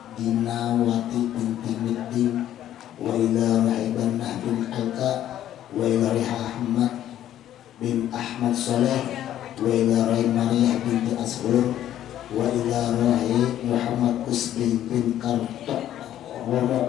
Dinawati bin Timiddin wa ila roh Ibannah bin Alka wa ila roh Ahmad bin Ahmad Saleh wa ila roh Mariah bin Asghur wa ila roh Muhammad Usbi bin Kartok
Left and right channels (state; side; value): quieter; right; 11.8 dB